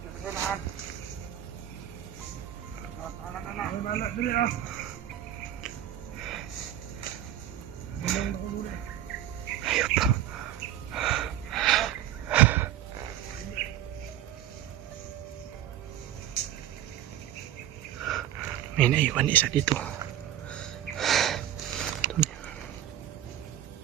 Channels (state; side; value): quieter; left; 11.9 dB